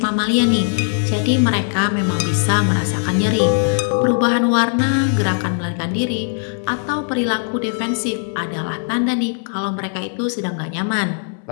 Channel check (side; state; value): right; silent; 66 dB below the other